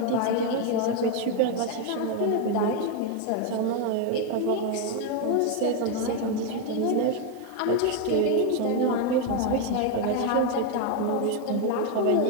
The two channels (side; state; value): both; different; correlation 0.01